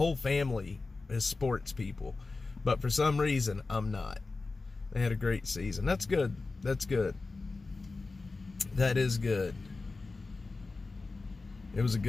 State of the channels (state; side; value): quieter; right; 3.7 dB